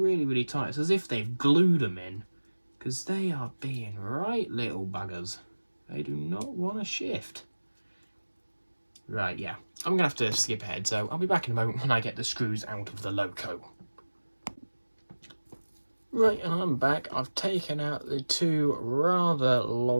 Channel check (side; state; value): both; inverted; correlation -1.00